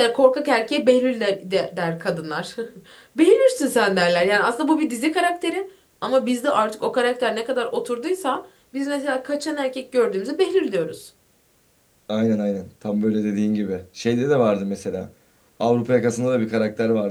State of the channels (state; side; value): identical; both; correlation 1.00